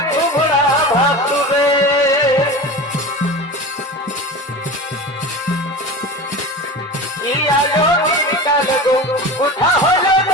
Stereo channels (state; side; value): normal; both; correlation 0.31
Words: তোমরা ভাসুরে। কি আলো দিনকাল গো কোথা হলো